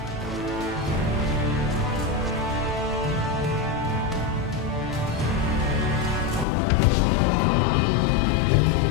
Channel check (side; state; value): right; drops out; at 6.5 s